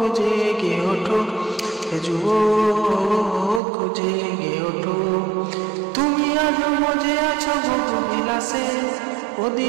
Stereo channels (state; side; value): drops out; left; at 3.6 s